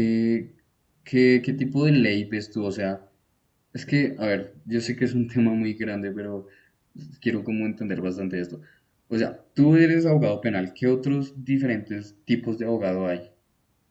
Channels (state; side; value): identical; both; correlation 1.00